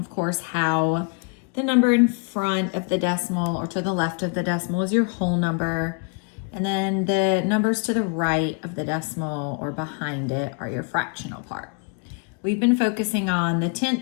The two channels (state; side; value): quieter; right; 36.7 dB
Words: course, how the number in front of the decimal or to the left of the decimal is your whole number. And then the numbers to the right of the decimal or behind it are your fractional part. We've been focusing on the